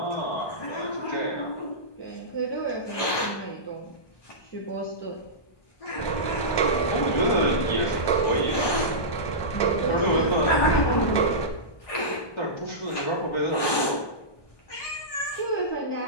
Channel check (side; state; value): right; late; 1.2 ms